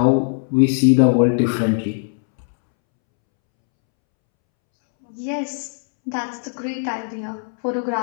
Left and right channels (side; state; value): right; silent; 66 dB below the other